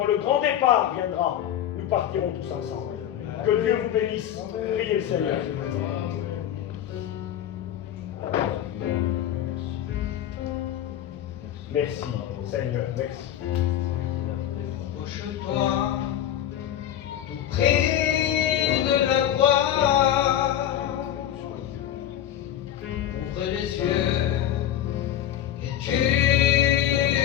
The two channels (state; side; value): quieter; right; 11.1 dB